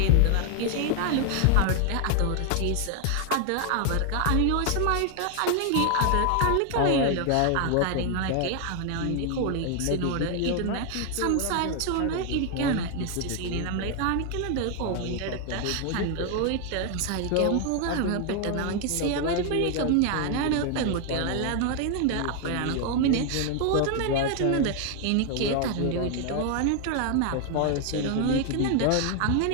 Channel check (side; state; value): both; different; correlation 0.00